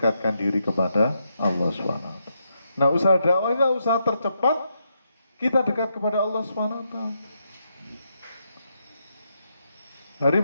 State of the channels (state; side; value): inverted; both; correlation -0.81